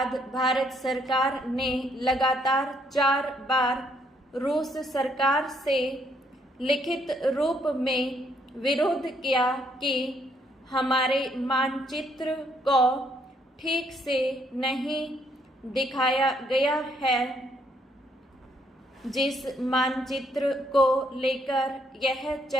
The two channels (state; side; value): normal; both; correlation 0.71